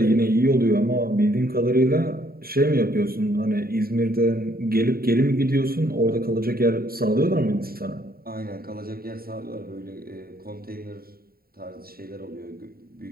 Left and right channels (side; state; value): left; late; 0.43 ms